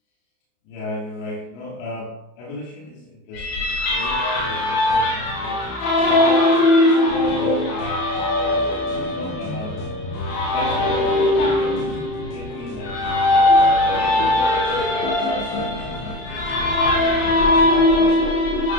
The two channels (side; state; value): right; late; 33 ms